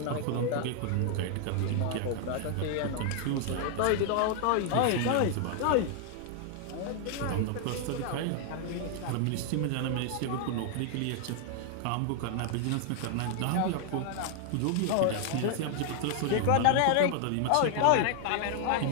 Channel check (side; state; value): both; different; correlation 0.00